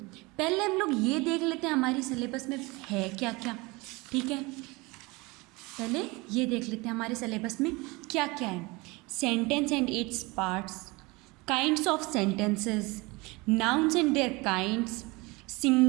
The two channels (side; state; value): left; quieter; 24.5 dB